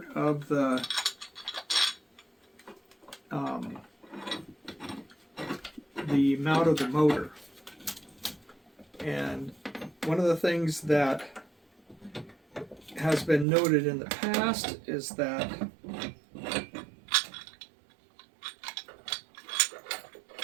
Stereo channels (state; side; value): drops out; left; at 13.5 s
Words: of the mount of the motor. And one of the things that has been noted in the past is that